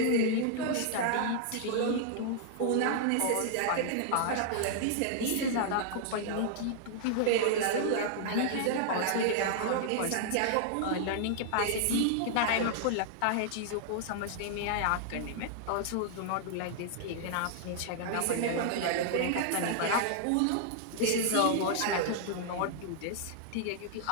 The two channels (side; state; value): both; different; correlation -0.01